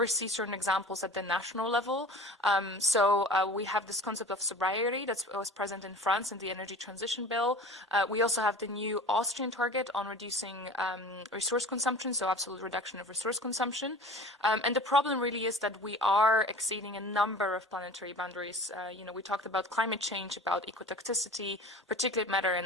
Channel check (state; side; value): normal; both; correlation 0.40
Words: see certain examples at the national level. So we have this concept of sobriety that was present in France in the energy transition bill. We also have the new Austrian target on reducing resource consumption, so absolute reduction of resource consumption. And the problem really is that we are exceeding a number of planetary boundaries. You know, we talked about climate change, about ecotoxicity, particulate matter,